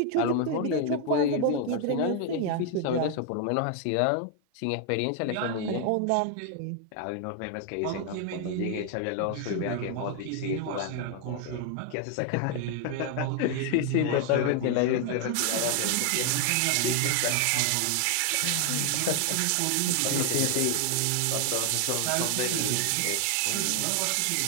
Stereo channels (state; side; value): different; both; correlation 0.00